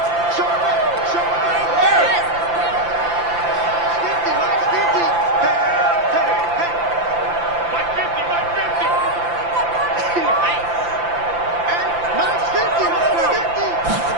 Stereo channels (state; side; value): late; left; 5.8 ms